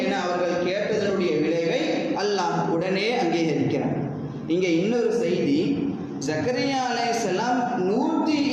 என அவர்கள் கேட்டதனுடைய விளைவை அல்லாஹ் உடனே அங்கீகரிக்கிறார். இங்கே இன்னொரு செய்தி, ஜக்கரியா அலைஹிஸ்ஸலாம்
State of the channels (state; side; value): identical; both; correlation 1.00